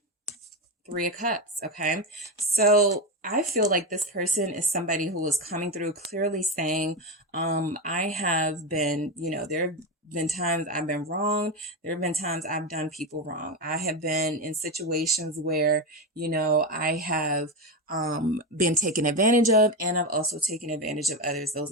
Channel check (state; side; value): normal; both; correlation 0.14